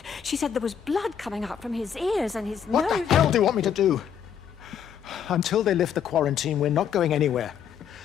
She said there was blood coming up from his ears and his nose. What the hell do you want me to do? Until they lift the quarantine, we're not going anywhere.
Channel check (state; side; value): quieter; right; 8.2 dB